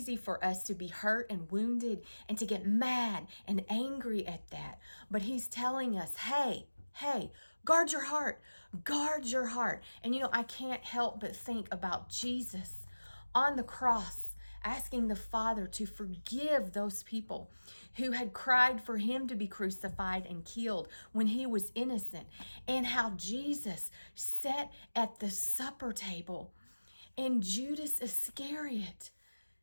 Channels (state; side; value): inverted; both; correlation -1.00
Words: for us to be hurt and wounded and to get mad and angry at that. But He's telling us, hey, guard your heart. Guard your heart. And I can't help but think about Jesus on the cross, asking the Father to forgive those people who had cried for Him to be crucified and killed when He was innocent, and how Jesus sat at the supper table and Judas Iscariot